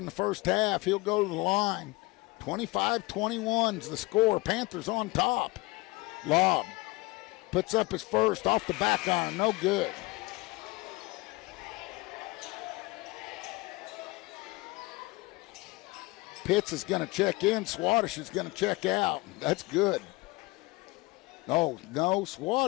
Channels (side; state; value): right; quieter; 22.7 dB